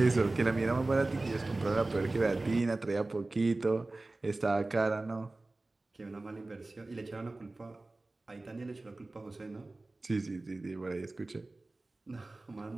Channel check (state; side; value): quieter; left; 3.1 dB